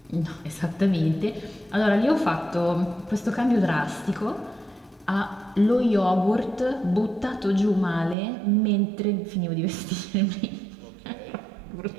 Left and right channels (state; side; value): drops out; left; at 8.2 s